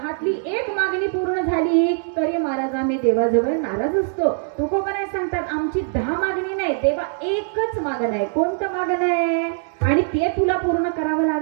1 मागणी पूर्ण झाली तरी महाराज आम्ही देवाजवळ नाराज असतो. तुकोबराय सांगतात आमची 10 मागणी नाही, देवा एकच मागणं आहे. कोणतं मागणं आहे आणि ते तुला पूर्ण करावं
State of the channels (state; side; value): silent; left; 64 dB below the other